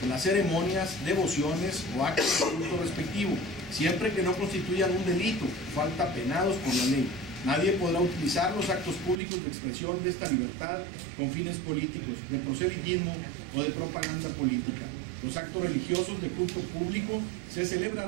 en las ceremonias, devociones o actos de culto respectivo, siempre que no constituyan un delito, falta penados por la ley. Nadie podrá utilizar los actos públicos de expresión de esta libertad con fines políticos, de proselitismo o de propaganda política. Los actos religiosos de culto público se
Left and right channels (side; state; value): left; drops out; at 9.2 s